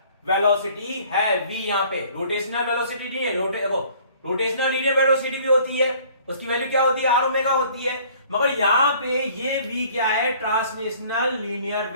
velocity है v यहां पे। रोटेशनल वेलोसिटी नहीं है। रोटेशनल लीनियर वेलोसिटी भी होती है, उसकी वैल्यू क्या होती है? आर ओमेगा होती है। मगर यहां पे ये v क्या है? ट्रांसलेशनल लीनियर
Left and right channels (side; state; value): both; inverted; correlation -0.54